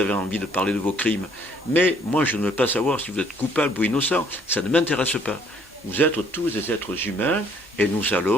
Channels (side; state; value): both; normal; correlation 0.62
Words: envie de parler de vos crimes. Mais moi, je ne veux pas savoir si vous êtes coupable ou innocent. Ça ne m'intéresse pas. Vous êtes tous des êtres humains et nous